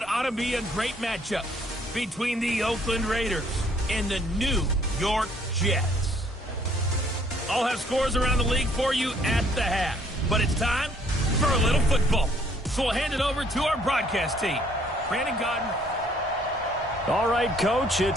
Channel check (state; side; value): normal; both; correlation 0.63